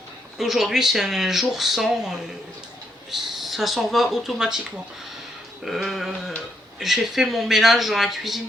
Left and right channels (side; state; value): both; normal; correlation 0.77